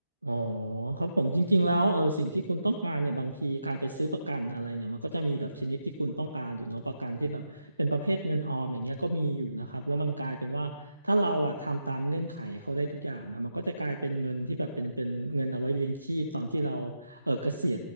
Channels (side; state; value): both; inverted; correlation -0.86